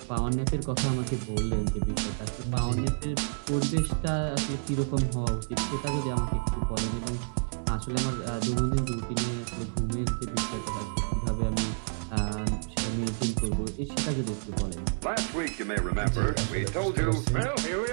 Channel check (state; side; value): silent; left; digital silence